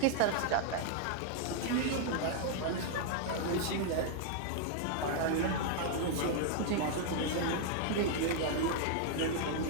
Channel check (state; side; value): different; both; correlation 0.00